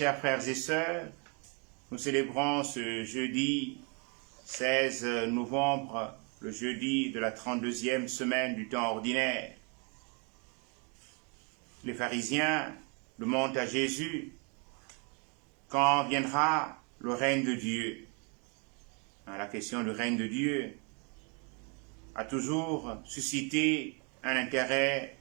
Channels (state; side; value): quieter; left; 35.2 dB